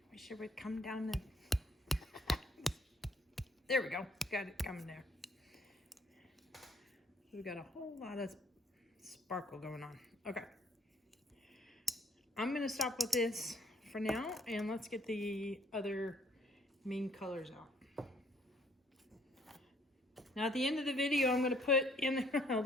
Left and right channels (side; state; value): both; normal; correlation 0.63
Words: Wish it would come down and there we go. Got it coming there. We've got a whole lot of sparkle going on. Okay. I'm gonna stop with this for now and let's get the other main colors out. Now at the end of the video, I'm gonna put in,